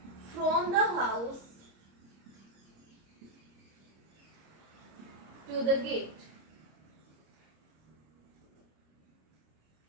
from the house to the gate.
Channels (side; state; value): left; late; 26 ms